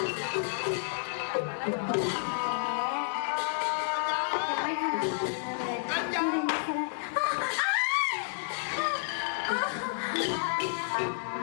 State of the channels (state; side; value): silent; right; digital silence